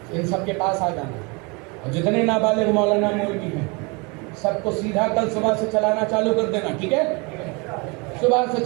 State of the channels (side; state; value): left; quieter; 29.4 dB